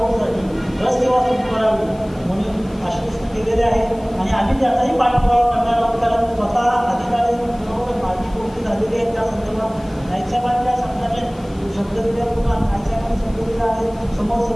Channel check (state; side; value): noise; left; hiss, 26 dB below the sound